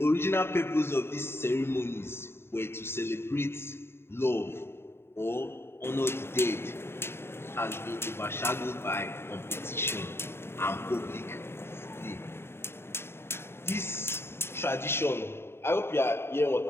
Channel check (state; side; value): late; right; 0.12 ms